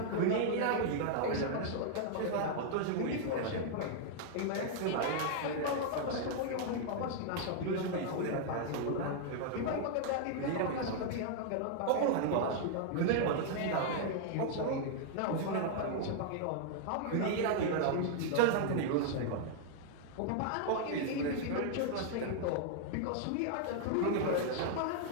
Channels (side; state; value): both; different; correlation -0.01